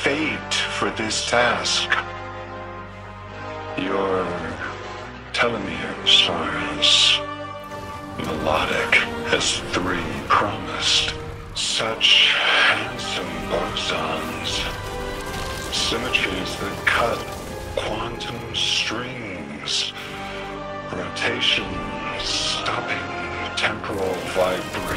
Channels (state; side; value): identical; both; correlation 1.00